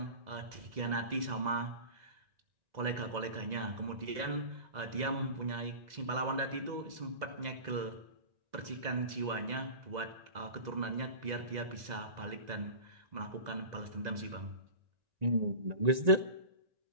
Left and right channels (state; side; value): late; left; 2.0 ms